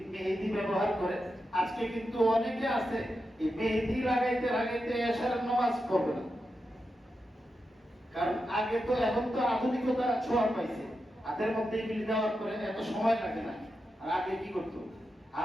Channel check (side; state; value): both; normal; correlation 0.88